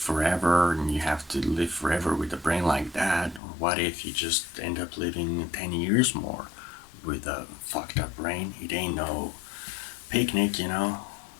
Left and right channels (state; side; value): drops out; right; at 3.4 s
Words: and you have to live forever with a brain like that? Or what if you just end up living 10 years more with a fucked up brain? It ain't no picnic, you know?